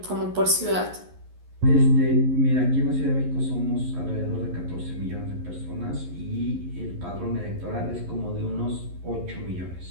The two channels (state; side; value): late; left; 11 ms